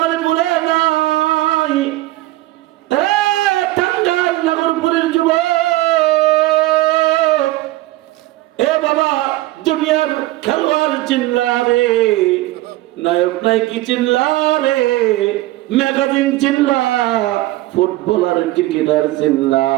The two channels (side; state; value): left; quieter; 17.6 dB